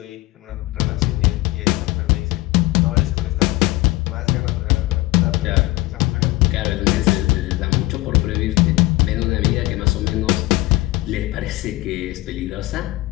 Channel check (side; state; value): right; quieter; 19.7 dB